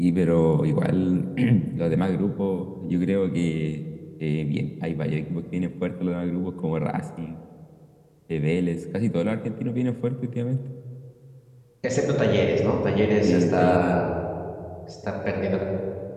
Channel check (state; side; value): identical; both; correlation 1.00